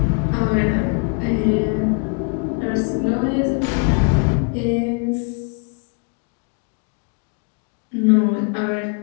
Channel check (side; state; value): right; quieter; 37.7 dB